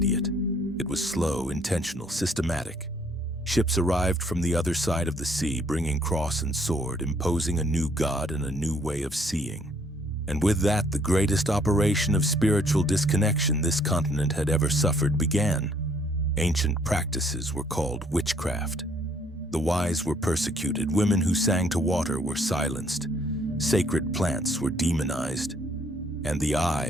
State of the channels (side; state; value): both; normal; correlation 0.65